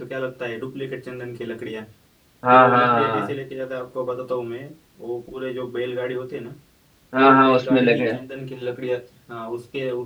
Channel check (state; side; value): identical; both; correlation 1.00